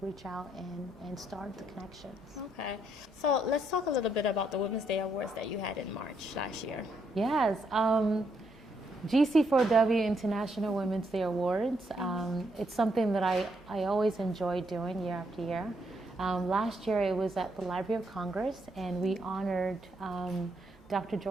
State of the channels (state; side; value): normal; both; correlation 0.75